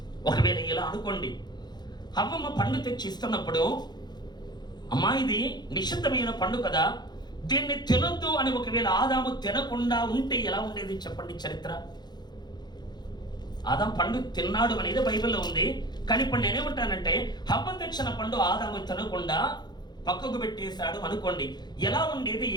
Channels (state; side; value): late; right; 0.21 ms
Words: ఒకవేళ ఇలా అనుకోండి, హవ్వమ్మ పండు తెచ్చి ఇస్తున్నప్పుడు, అమ్మా ఇది నిషిద్ధమైన పండు కదా, దీన్ని తినొద్దు అని ఒకవేళ ఆదాము తినకుండా ఉంటే ఎలా ఉండేది చెప్పండి చరిత్ర? ఆదాం పండు తిన్నాడు అనేది బైబిల్లో ఉంది. కానీ ఇప్పుడు నేనేమంటానంటే, హవ్వ తెచ్చిన పండు ఆదాము తినకుండా పక్కకు పెట్టేశాడు అనుకోండి, ఎలా ఉండేది